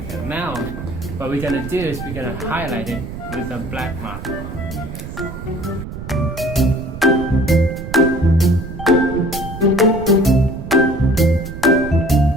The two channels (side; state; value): right; noise; rumble, 9 dB below the sound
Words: that. Now, what we're gonna do is we're gonna highlight it with a black marker.